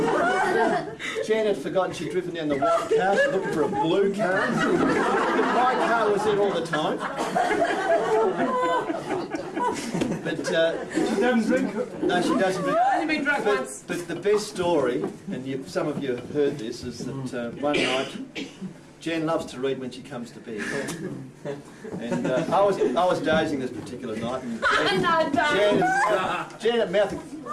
Jan had forgotten she'd driven down the white car, she's looking for a blue car. My car was there all the time. But she doesn't drink. No, she doesn't drink. I've only been drunk once. But the best story, and some of you have heard this, is that one night Jan loves to read when she comes to bed. And I was dozing this particular night, and Jan's mouth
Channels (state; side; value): identical; both; correlation 1.00